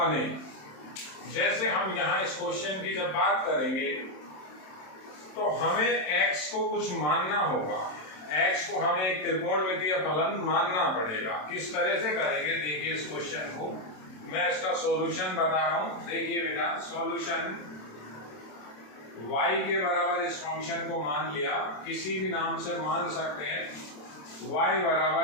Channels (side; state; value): right; late; 27 ms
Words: जैसे हम यहाँ इस क्वेश्चन की जब बात करेंगे तो हमें x को कुछ मानना होगा। x को हमें एक त्रिकोणमितीय फलन मानना पड़ेगा। किस तरह से करेंगे देखिए इस क्वेश्चन को। मैं इसका सॉल्यूशन बता रहा हूँ। देखिए बेटा, सॉल्यूशन y के बराबर इस फंक्शन को मान लिया, किसी भी नाम से मान सकते हैं। y